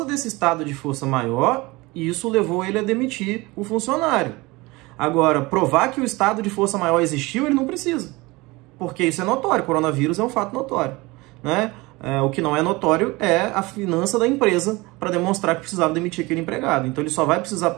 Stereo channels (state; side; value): quieter; left; 22.7 dB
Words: desse estado de força maior, isso levou ele a demitir o funcionário. Agora, provar que o estado de força maior existiu, ele não precisa, porque isso é notório, o coronavírus é um fato notório, né? O que não é notório é a finança da empresa para demonstrar que precisava demitir aquele empregado. Então ele só vai precisar